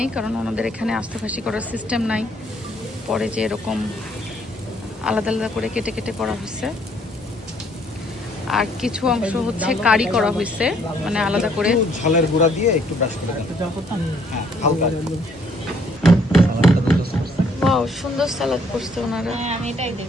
কারণ ওনাদের এখানে আস্ত খাসি করার সিস্টেম নাই। পরে যে এরকম আলাদা আলাদা করে কেটে কেটে করা হয়েছে, আর কিছু অংশ হচ্ছে কারি করা হয়েছে, মানে আলাদা করে ঝালের গুঁড়া দিয়ে একটু ব্রাশ করে দেন। হ্যাঁ, হালকা। ওয়াও, সুন্দর সালাদ করছে ওনারা। হ্যাঁ, আমি এটাই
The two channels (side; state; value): both; normal; correlation 0.66